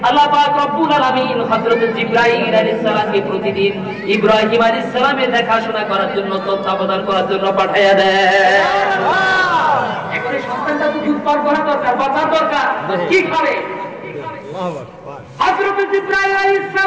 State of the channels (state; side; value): identical; both; correlation 1.00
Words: আল্লাহ পাক রব্বুল আলামিন হযরত জিবরাইল আলাইহিস সালামকে প্রতিদিন ইব্রাহিম আলাইহিস সালামের দেখাশোনা করার জন্য, তত্ত্বাবধান করার জন্য পাঠায়া দেয়। এখন এই সন্তানটা তো দুধ পান করা দরকার, বাঁচা দরকার, কি খাবে? হযরত জিবরাইল আলাইহিস